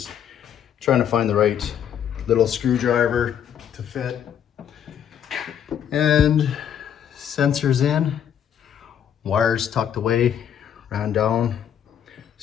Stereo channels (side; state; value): right; quieter; 9.1 dB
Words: trying to find the right little screwdriver to fit. And sensors in, wires tucked away, ran down,